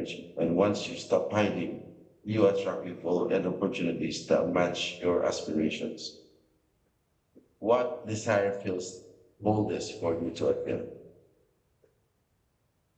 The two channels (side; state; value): both; identical; correlation 1.00